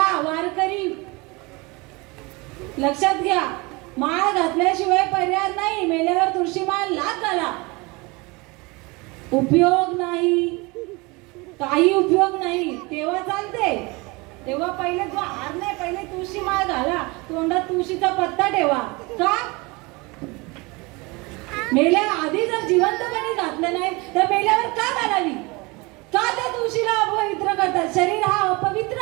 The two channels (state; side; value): quieter; left; 25.7 dB